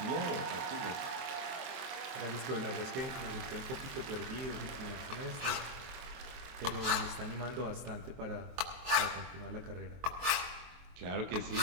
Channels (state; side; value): late; left; 23 ms